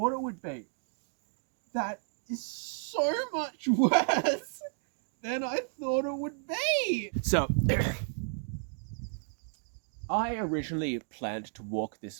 it would be. That is so much worse than I thought it would be. So, I originally planned to walk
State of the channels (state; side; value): silent; left; digital silence